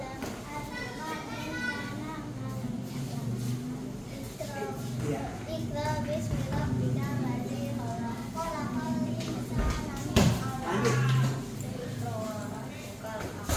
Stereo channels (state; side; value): identical; both; correlation 1.00